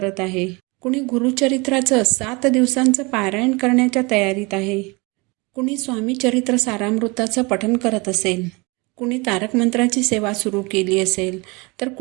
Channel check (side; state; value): left; quieter; 26.8 dB